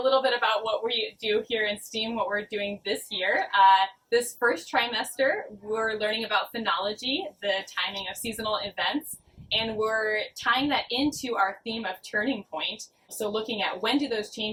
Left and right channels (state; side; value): identical; both; correlation 1.00